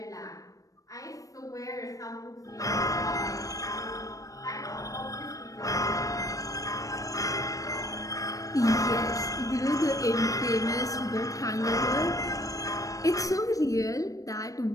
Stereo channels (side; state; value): right; late; 0.16 ms